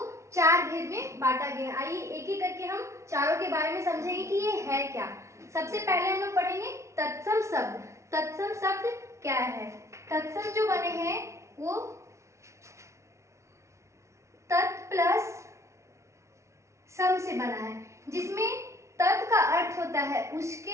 4 भेद में बांटा गया। आइए एक एक करके हम चारों के बारे में समझेंगे कि ये है क्या। सबसे पहले हम लोग पढ़ेंगे तत्सम शब्द। तत्सम शब्द क्या है? तत्सम जो बने हैं वो तत् प्लस सम से बना है, जिसमें तत् का अर्थ होता है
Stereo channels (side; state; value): left; late; 0.14 ms